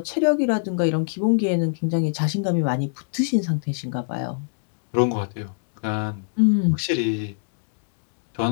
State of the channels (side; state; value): right; silent; digital silence